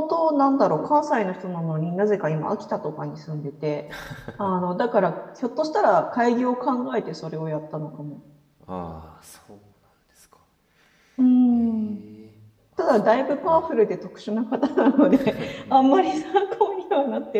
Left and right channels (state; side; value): identical; both; correlation 1.00